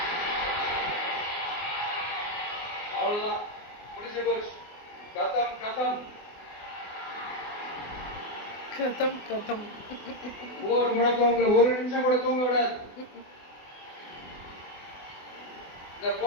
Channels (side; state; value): right; late; 24 ms